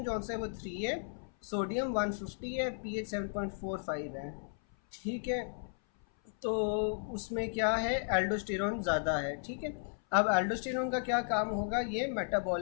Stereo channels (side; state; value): right; silent; 55 dB below the other